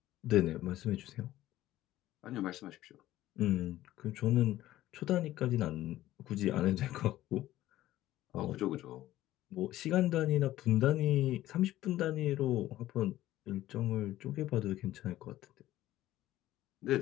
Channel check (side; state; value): right; quieter; 14.8 dB